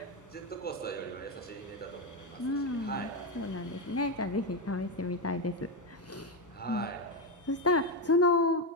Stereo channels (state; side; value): normal; both; correlation 0.09